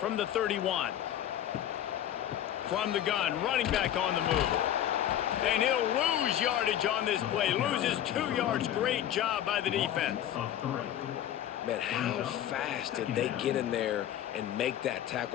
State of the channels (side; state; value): right; quieter; 11.2 dB